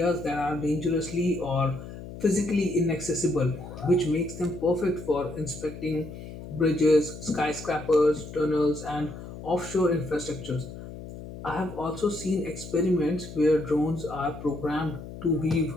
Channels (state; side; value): noise; left; hum, 12 dB below the sound